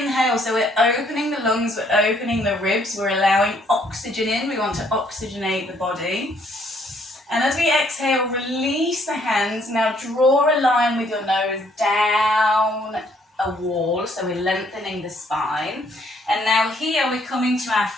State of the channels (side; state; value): both; normal; correlation 0.66